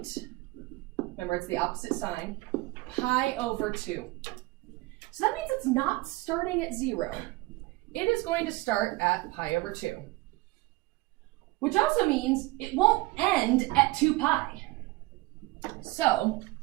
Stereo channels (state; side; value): quieter; left; 21.4 dB